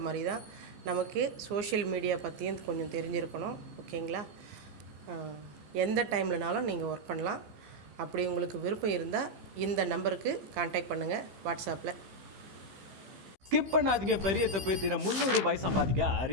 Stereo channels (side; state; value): left; late; 15 ms